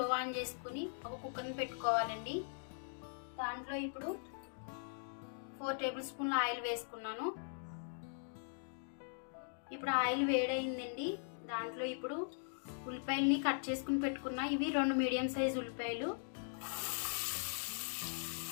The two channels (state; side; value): silent; right; digital silence